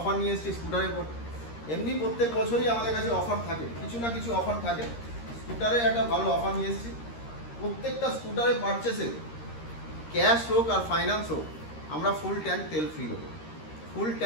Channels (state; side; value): late; right; 13 ms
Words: নিয়ে এসেছি স্কুটারের উপর। এমনি প্রত্যেক বছরই আমাদের কাছে অফার থাকে, কিছু না কিছু অফার থাকে। স্কুটারে একটা ভালো অফার নিয়ে এসেছি। প্রত্যেকটা স্কুটারে পারচেসে ক্যাশ হোক আর ফাইন্যান্স হোক, আমরা ফুল ট্যাঙ্ক তেল ফ্রি দেবো। ফুল